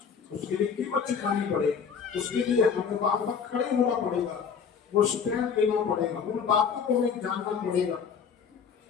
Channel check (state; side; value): quieter; right; 6.5 dB